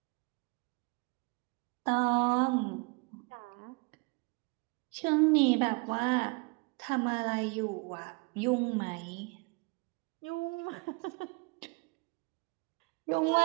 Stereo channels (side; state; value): left; quieter; 30.5 dB